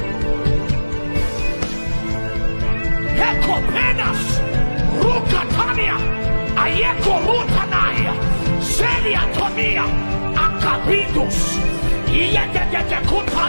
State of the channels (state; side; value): inverted; both; correlation -1.00